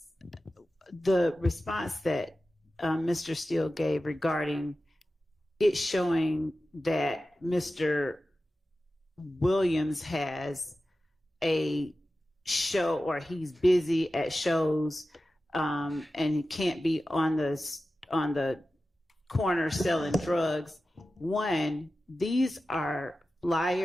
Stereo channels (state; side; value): normal; both; correlation 0.94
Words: response that Mr. Steele gave regarding it showing that Mr. Williams has a show or he's busy at shows and he can't be on the corner selling drugs. One, these are